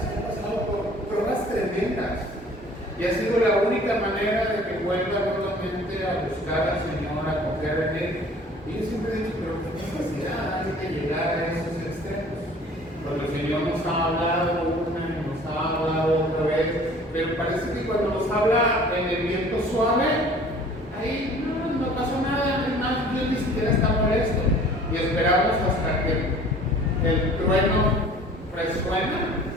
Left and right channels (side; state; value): both; normal; correlation 0.49